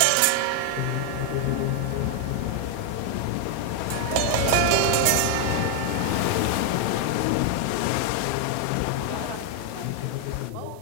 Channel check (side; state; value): both; different; correlation 0.00